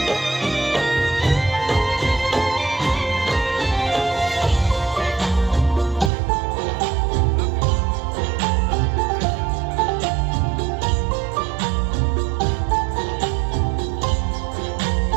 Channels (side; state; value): left; drops out; at 6.1 s